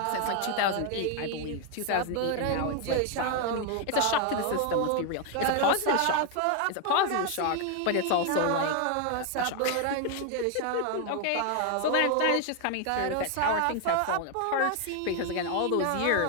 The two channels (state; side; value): different; both; correlation 0.01